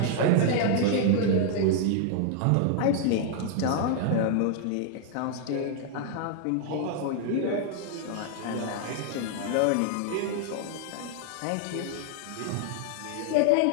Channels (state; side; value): different; both; correlation 0.00